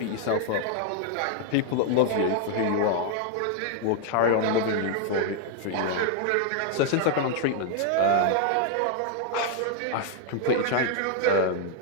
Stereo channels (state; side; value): different; both; correlation 0.00